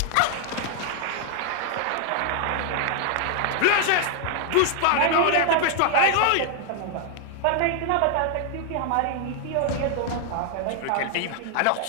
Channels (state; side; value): different; both; correlation 0.00